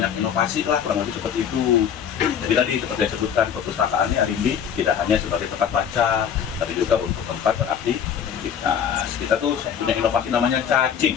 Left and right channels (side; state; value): right; quieter; 8.2 dB